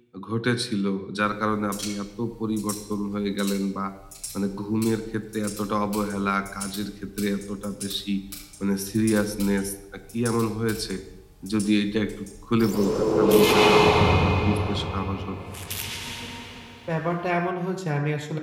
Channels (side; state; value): both; identical; correlation 1.00